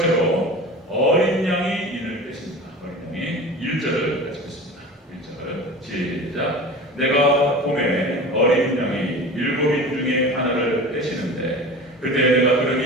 어린 양이 인을 빼십니다. 어린 양이 1절을 같이 보겠습니다. 1절 시작. 내가 봄에 어린 양이 7인 중에 하나를 빼시는데 그때 내가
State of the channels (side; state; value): both; normal; correlation 0.35